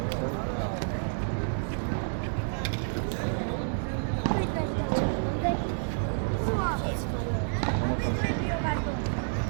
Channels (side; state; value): left; silent; digital silence